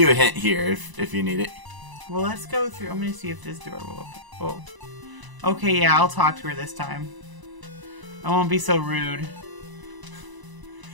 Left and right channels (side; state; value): left; late; 1.0 ms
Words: a hint here if you need it. Well, let's go through. I'm gonna see if this door will open. Oh. Okay, yeah, I'll talk to her this time. I won't be so rude.